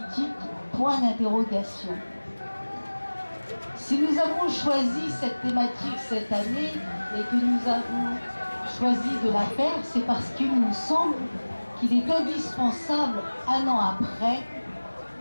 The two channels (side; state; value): both; inverted; correlation -1.00